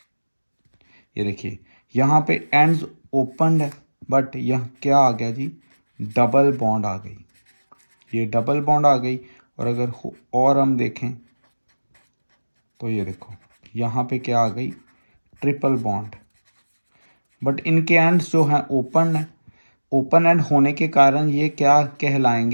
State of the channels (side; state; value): both; inverted; correlation -1.00